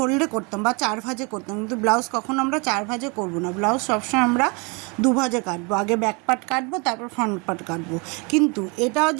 করতাম বা 4 ভাঁজে করতাম, কিন্তু ব্লাউজ কখনো আমরা 4 ভাঁজে করবো না। ব্লাউজ সবসময় আমরা 2 ভাঁজে কাটবো। আগে ব্যাক পার্ট কাটবো, তারপর ফ্রন্ট পার্ট কাটবো। কিন্তু এটাও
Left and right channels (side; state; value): left; quieter; 31.1 dB